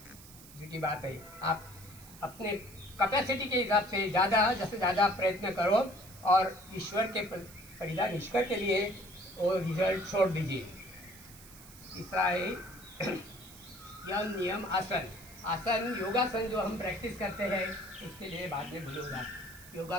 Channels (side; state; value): right; noise; hiss, 19 dB below the sound